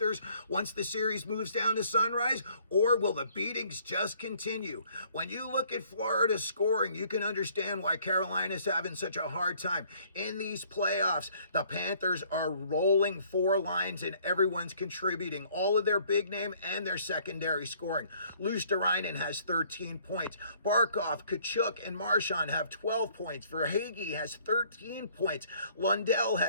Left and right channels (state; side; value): inverted; both; correlation -0.61